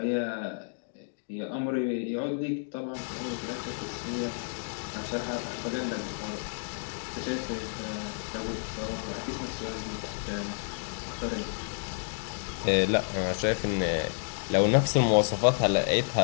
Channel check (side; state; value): right; silent; digital silence